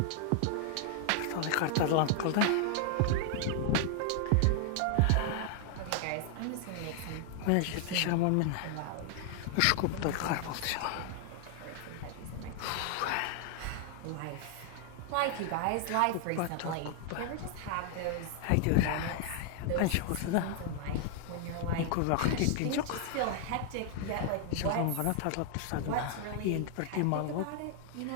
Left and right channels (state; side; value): different; both; correlation 0.00